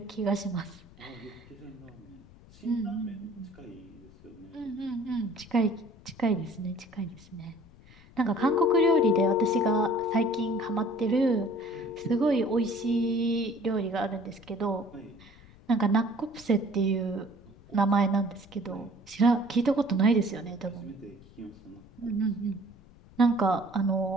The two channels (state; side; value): noise; left; rumble, 23 dB below the sound